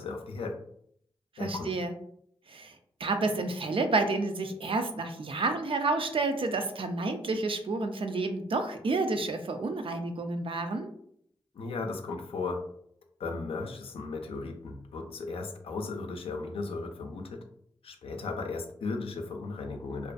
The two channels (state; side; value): normal; both; correlation 0.54